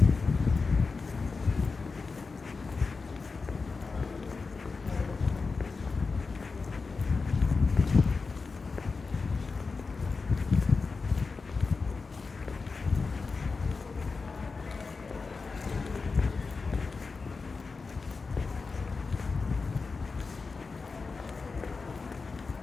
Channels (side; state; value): right; quieter; 4.4 dB